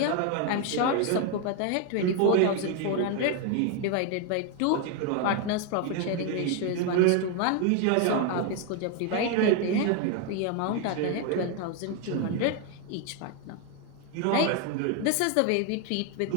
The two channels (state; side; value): different; both; correlation 0.01